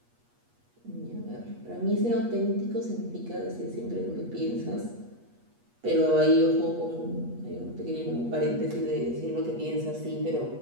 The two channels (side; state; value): left; late; 8.4 ms